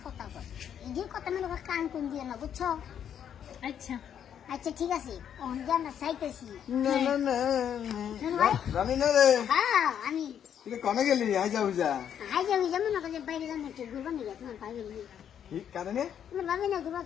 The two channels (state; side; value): quieter; right; 9.0 dB